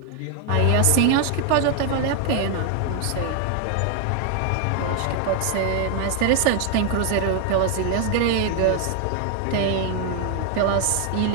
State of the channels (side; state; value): both; different; correlation 0.00